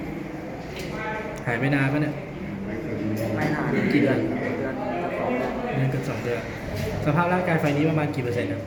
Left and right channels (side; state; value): both; identical; correlation 1.00